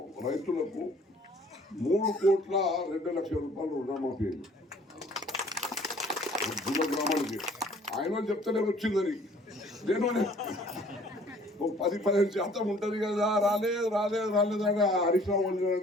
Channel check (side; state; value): both; normal; correlation 0.55